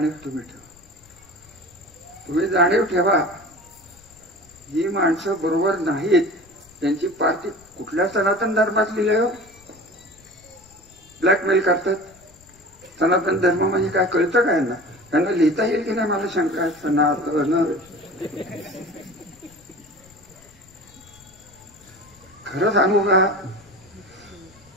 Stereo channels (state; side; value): noise; left; rumble, 27 dB below the sound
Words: तुम्ही ठेवा. तुम्ही जाणीव ठेवा, ही माणसं बरोबर नाहीत. त्यांची पार्टी कुठल्या सनातन धर्मात लिहिलंय हो? ब्लॅकमेल करतात. सनातन धर्म म्हणजे काय कळतं काय ना? त्यांना लिहिता येईल की नाही मला शंका आहे. सनातन खरं सांगू का,